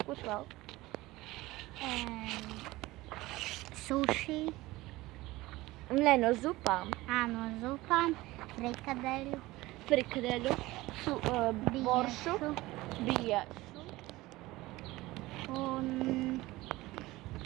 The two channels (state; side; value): quieter; left; 19.1 dB